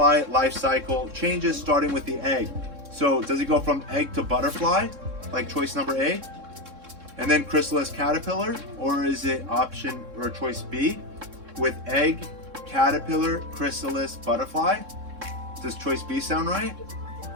life cycle changes, starting with the egg. So does it go from egg to butterfly, like choice number A, and then chrysalis caterpillar, or is it option or choice B with egg, caterpillar, chrysalis, butterfly? Does choice B sound right?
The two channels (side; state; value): left; late; 3.7 ms